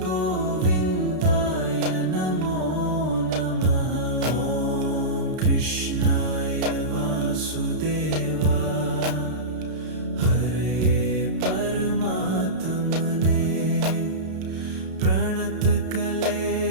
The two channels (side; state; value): left; late; 32 ms